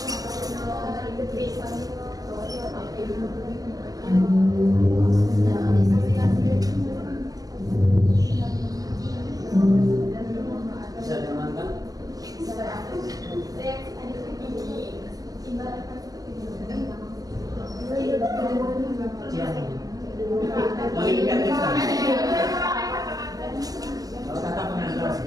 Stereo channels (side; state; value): left; late; 0.18 ms